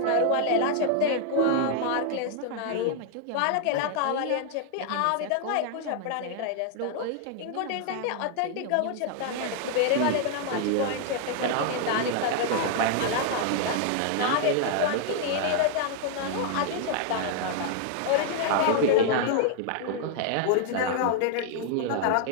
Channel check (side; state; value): both; different; correlation 0.00